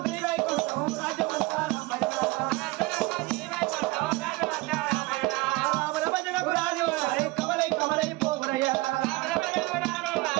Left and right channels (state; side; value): quieter; left; 22.0 dB